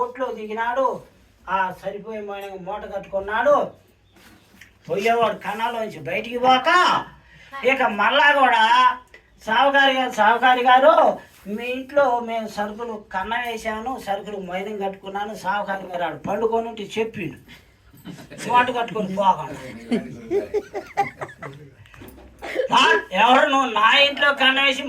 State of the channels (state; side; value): identical; both; correlation 1.00